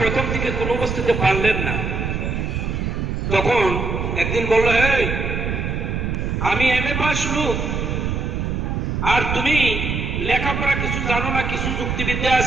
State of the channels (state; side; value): noise; right; rumble, 2 dB below the sound